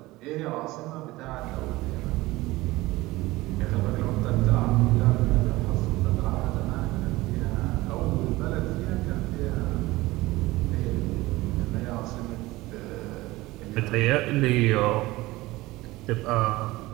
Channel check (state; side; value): quieter; left; 19.4 dB